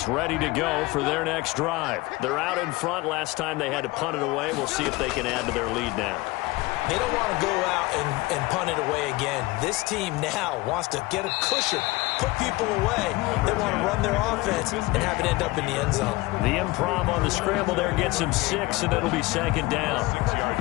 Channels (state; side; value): quieter; right; 21.3 dB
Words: ready to go for their next drive. They're out in front. Last time they had to punt it away. We'll see if they can add to their lead now. They don't want to go out and punt it away again. This team now wants to get a cushion, put people away. They want to run their offense and have it end up in the end zone. The improv on the scramble there gets him 6, and it'll be 2nd down.